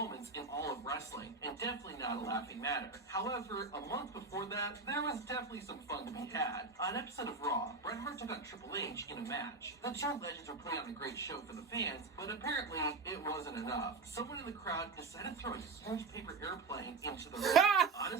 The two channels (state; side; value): quieter; left; 4.1 dB